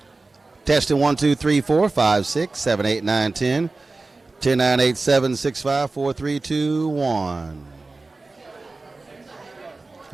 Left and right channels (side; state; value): left; quieter; 3.5 dB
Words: Testing 1, 2, 3, 4, 5, 6, 7, 8, 9, 10. 10, 9, 8, 7, 6, 5, 4, 3, 2, 1.